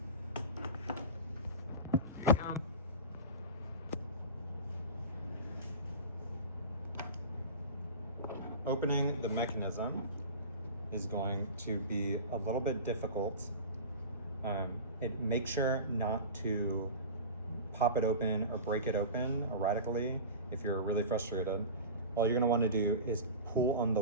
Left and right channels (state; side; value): inverted; both; correlation -0.32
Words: Opening the mechanism is going to be a little bit difficult. Make sure not to pop it open or break it open erratically if you're really frustrated. All you're gonna wanna do is pull on the